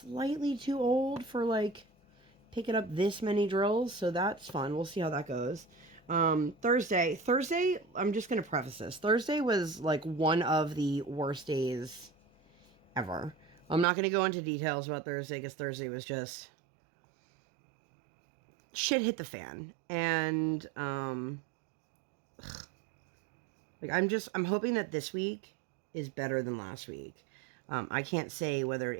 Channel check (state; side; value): drops out; left; at 13.9 s